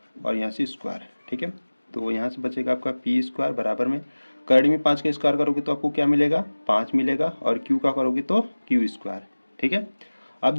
और यहाँ से स्क्वायर। ठीक है, तो यहाँ से बचेगा आपका पी स्क्वायर बराबर में करड़ी में 5 का स्क्वायर करोगे तो आपको क्या मिलेगा, 5 मिलेगा, और क्यू का करोगे तो क्यू स्क्वायर। ठीक है, अब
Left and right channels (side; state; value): both; inverted; correlation -1.00